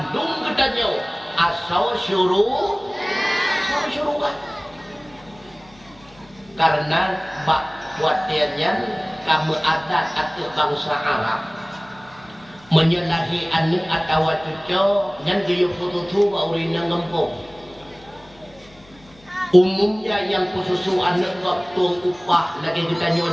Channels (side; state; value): left; noise; hum, 26 dB below the sound